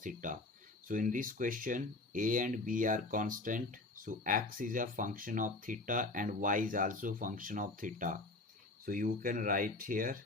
theta. So in this question, a and b are constant, so x is a function of theta and y is also function of theta. So you can write here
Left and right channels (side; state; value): right; quieter; 3.1 dB